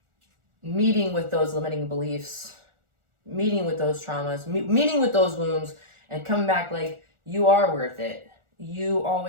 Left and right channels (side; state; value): left; late; 1.4 ms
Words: meeting with those limiting beliefs, meeting with those traumas, meeting with those wounds, and coming back like, you are worth it. You